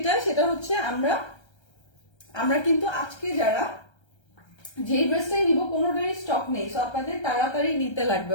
সেটা হচ্ছে আমরা কিন্তু আজকে যারা যে ড্রেসটাই নিব কোনোটারই স্টক নেই, সো আপনাদের তাড়াতাড়ি নিতে লাগবে,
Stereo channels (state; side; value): late; right; 1.3 ms